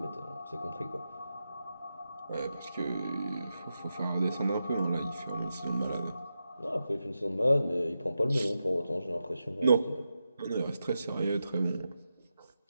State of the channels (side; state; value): both; inverted; correlation -0.89